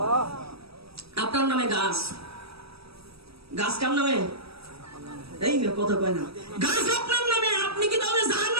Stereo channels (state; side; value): late; left; 0.77 ms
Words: আপনার নামে গাছ, গাছ কার নামে? এই না, কথা কয় না। গাছ আপনার নামে, আপনি কি তাহলে